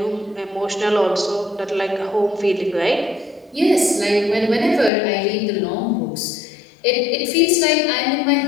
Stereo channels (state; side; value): drops out; right; at 4.9 s